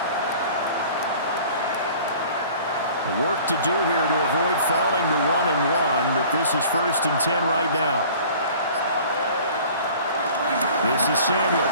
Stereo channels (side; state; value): both; inverted; correlation -0.47